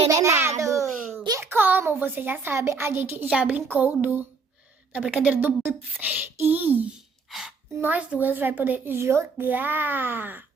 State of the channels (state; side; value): quieter; left; 4.7 dB